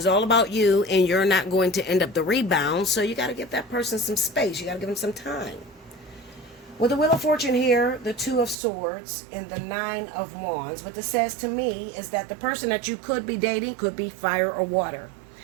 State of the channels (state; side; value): drops out; left; at 8.6 s